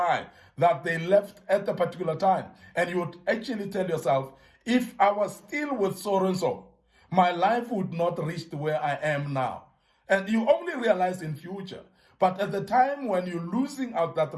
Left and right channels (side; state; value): both; identical; correlation 1.00